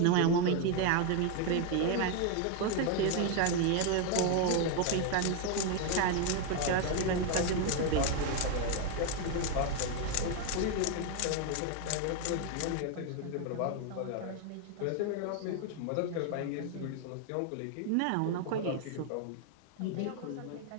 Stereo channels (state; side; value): different; both; correlation 0.01